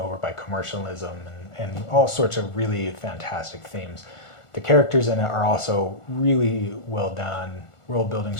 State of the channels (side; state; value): right; late; 1.4 ms